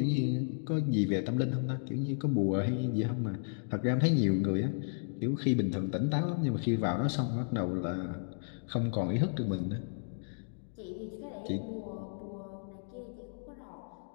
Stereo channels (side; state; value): right; silent; digital silence